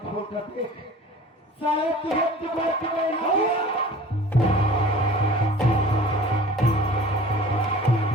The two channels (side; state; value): both; normal; correlation 0.44